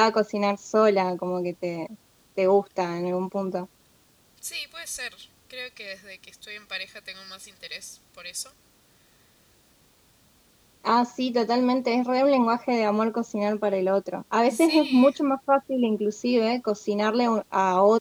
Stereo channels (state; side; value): identical; both; correlation 1.00